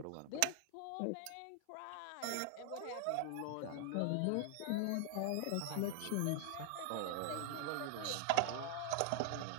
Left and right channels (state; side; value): different; both; correlation 0.00